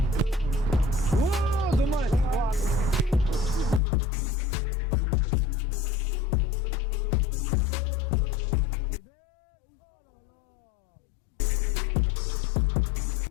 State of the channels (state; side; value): drops out; right; at 3.8 s